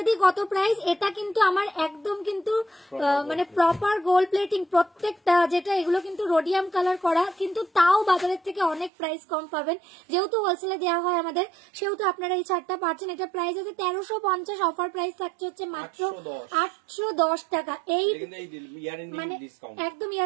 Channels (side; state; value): left; drops out; at 8.9 s